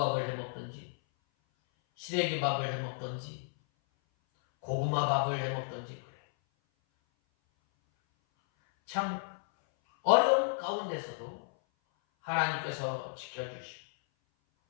해먹든지 시래기밥을 해먹든지 고구마밥을 해먹든지 그래요. 참 어려운 가운데서도 하나님께서 지켜주시고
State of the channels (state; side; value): silent; right; 56 dB below the other